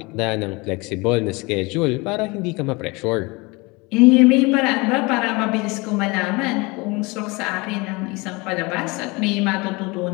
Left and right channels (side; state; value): right; quieter; 25.6 dB